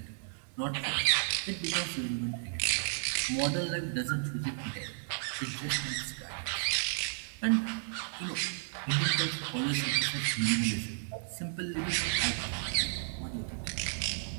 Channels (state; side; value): silent; left; digital silence